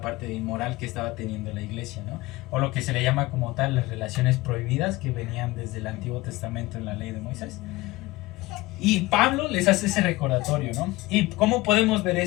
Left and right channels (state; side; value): quieter; right; 20.3 dB